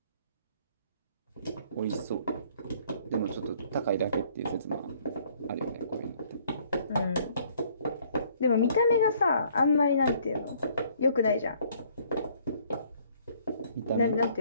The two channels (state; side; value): inverted; both; correlation -0.61